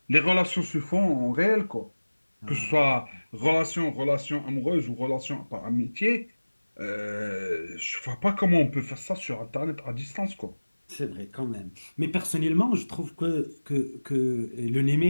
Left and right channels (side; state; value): both; inverted; correlation -1.00